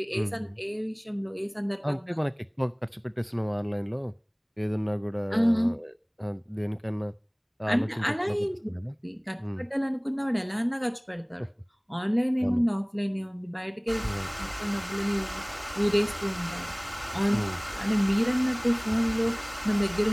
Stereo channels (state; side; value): identical; both; correlation 1.00